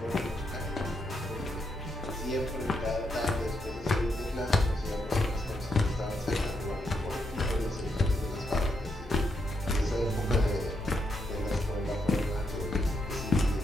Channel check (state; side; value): normal; both; correlation 0.80